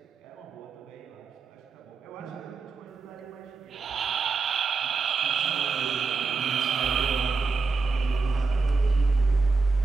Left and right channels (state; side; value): quieter; left; 4.4 dB